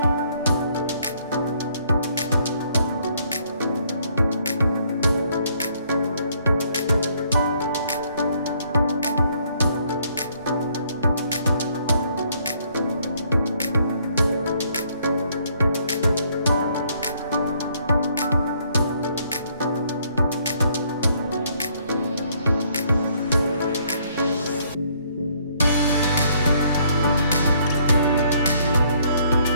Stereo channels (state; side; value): inverted; both; correlation -0.67